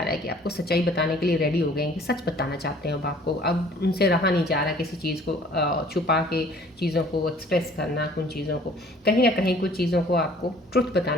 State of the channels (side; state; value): both; normal; correlation 0.54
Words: रहा है कि आपको सच्चाई बताने के लिए रेडी हो गए हैं, कि सच बताना चाहते हैं अब आपको, अब उनसे रहा नहीं जा रहा किसी चीज़ को छुपा के चीज़ों को एक्सप्रेस करना, उन चीज़ों को कहीं ना कहीं कुछ चीज़ों को आपको ट्रुथ